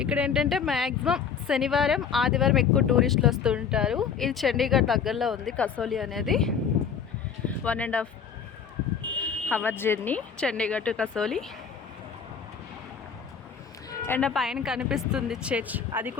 ఇక్కడ ఏంటంటే మ్యాక్సిమం శనివారం ఆదివారం ఎక్కువ టూరిస్టులు వస్తూ ఉంటారు. ఇది చండీగఢ్ దగ్గరలో ఉంది కసోలి అనేది. 1.5 hour journey Chandigarh to Kasauli. And పైన కనిపిస్తుంది చర్చ్, అది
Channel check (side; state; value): right; quieter; 6.8 dB